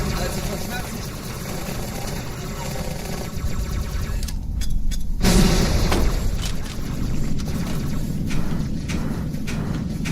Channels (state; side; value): identical; both; correlation 1.00